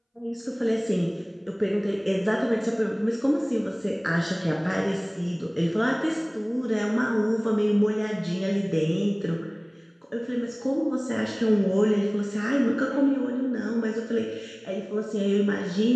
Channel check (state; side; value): identical; both; correlation 1.00